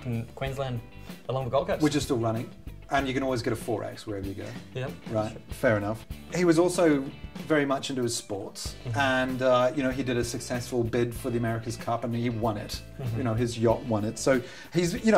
in Queensland along the Gold Coast. Which is still running. And you can always get a 4X wherever you go. Yep. Right, fair enough. He was also very much into his sports, and you know, he did a successful bid for the America's Cup, and he won it. You know, his yacht won it. So he's, you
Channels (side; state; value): both; identical; correlation 1.00